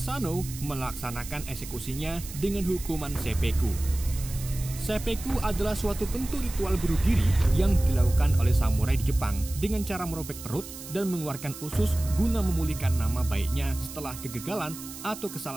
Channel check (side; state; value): right; noise; hiss, 13 dB below the sound